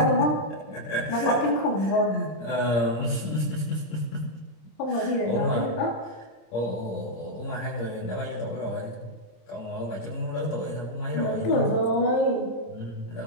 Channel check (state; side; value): late; right; 26 ms